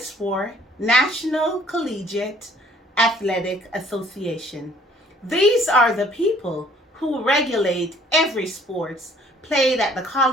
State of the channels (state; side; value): normal; both; correlation 0.59